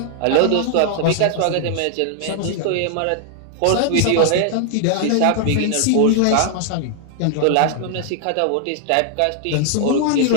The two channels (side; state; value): both; different; correlation 0.00